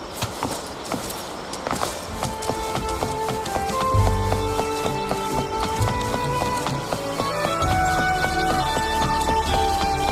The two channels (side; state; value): both; identical; correlation 1.00